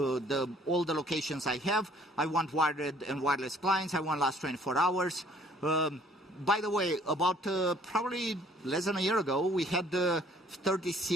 locations I have. I want wired and wireless clients, I want last 24 hours. By the way, about probably less than a year ago, we had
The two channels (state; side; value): normal; both; correlation 0.59